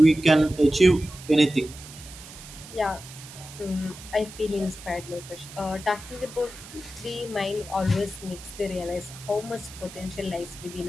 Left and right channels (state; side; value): noise; right; hiss, 16 dB below the sound